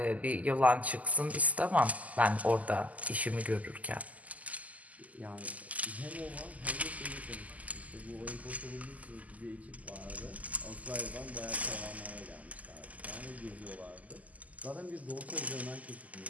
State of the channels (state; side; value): late; left; 0.075 ms